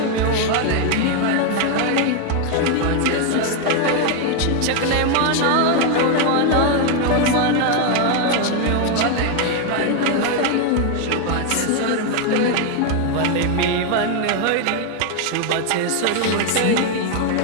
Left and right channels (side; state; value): both; different; correlation 0.01